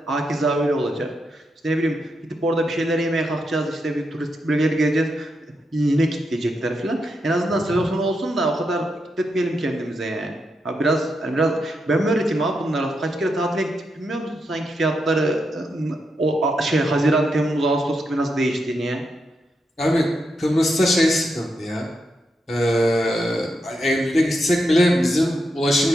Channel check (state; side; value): normal; both; correlation 0.84